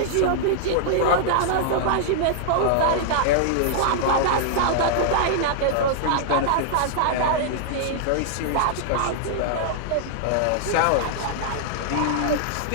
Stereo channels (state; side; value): different; both; correlation -0.01